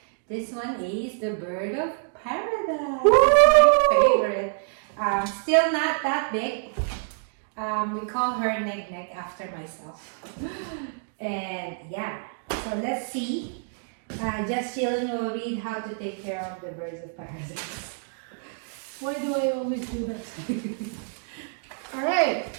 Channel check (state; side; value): silent; left; digital silence